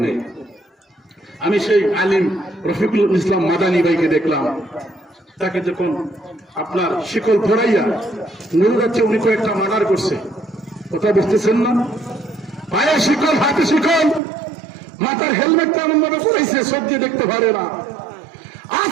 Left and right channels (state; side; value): drops out; left; at 14.2 s